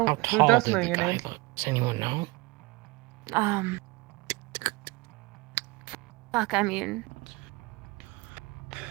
How who tall does did know the your guy name? look? Does anyone know? Fuck, I mean...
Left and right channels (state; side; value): quieter; left; 23.7 dB